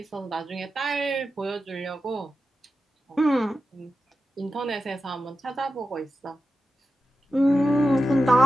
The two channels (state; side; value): normal; both; correlation 0.91